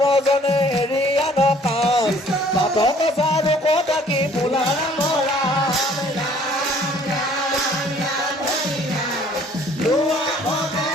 এৰি আন কাম বাটক চাৰু কথা কি বোলা ৰাম ৰাম ৰাম ৰাম ৰাম হৰি ৰাম লোৱা সবে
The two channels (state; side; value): normal; both; correlation 0.57